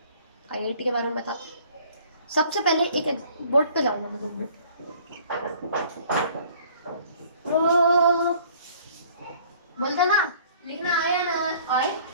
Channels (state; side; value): inverted; both; correlation -0.54